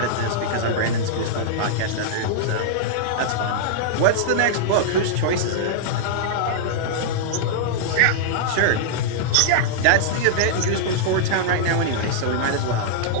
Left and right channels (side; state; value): both; different; correlation -0.02